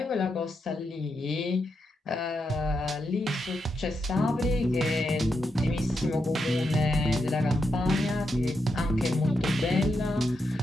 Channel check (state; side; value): normal; both; correlation 0.84